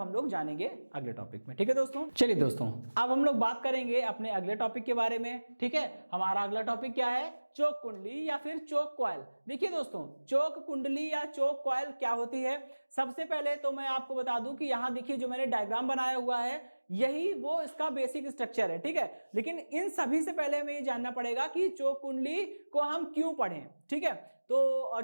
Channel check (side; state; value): both; inverted; correlation -1.00